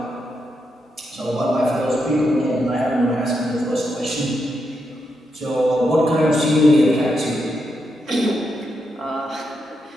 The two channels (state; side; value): normal; both; correlation 0.83